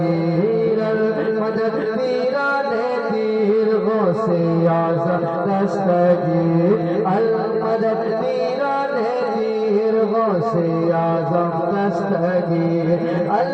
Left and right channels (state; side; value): identical; both; correlation 1.00